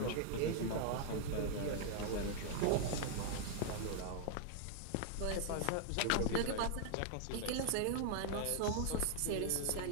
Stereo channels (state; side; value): different; both; correlation 0.00